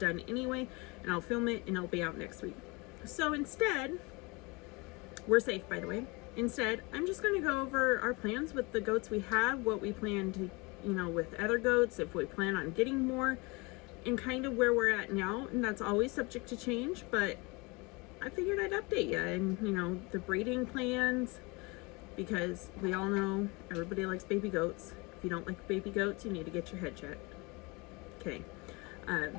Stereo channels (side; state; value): right; quieter; 26.8 dB